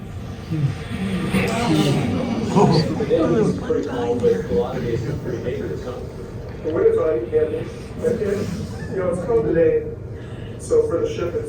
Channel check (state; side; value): identical; both; correlation 1.00